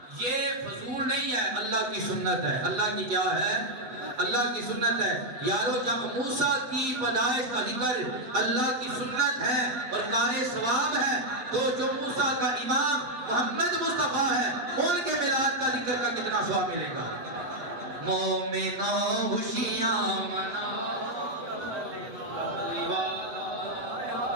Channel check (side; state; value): left; late; 7.6 ms